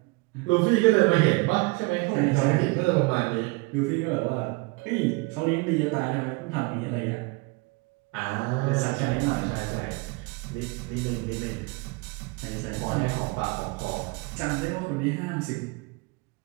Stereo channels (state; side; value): quieter; left; 26.8 dB